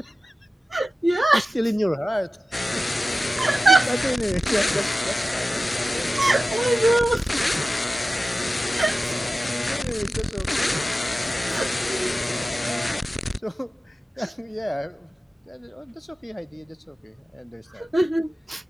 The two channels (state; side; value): normal; both; correlation 0.95